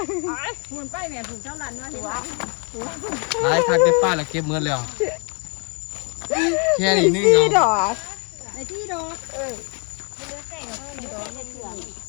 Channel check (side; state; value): right; quieter; 37.0 dB